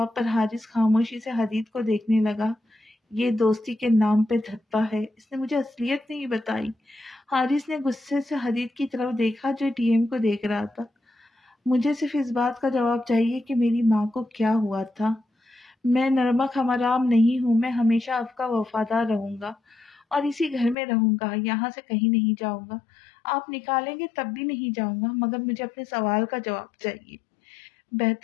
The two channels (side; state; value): right; drops out; at 20.8 s